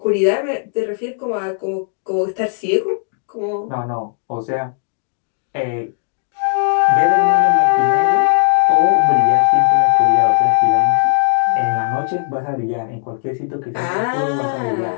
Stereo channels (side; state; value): right; silent; digital silence